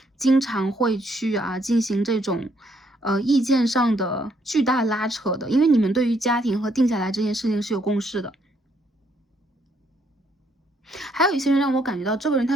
经常会去进行这种意见上的巨大拉扯的，因为你们对于家庭和定下来这件事情是有共识的。还有一些人让我感觉到这个人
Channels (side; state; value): both; normal; correlation 0.71